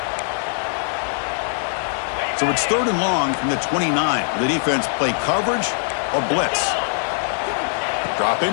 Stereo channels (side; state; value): right; silent; digital silence